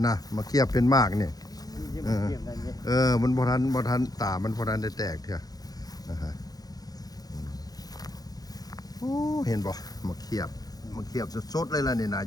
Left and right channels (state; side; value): late; right; 0.18 ms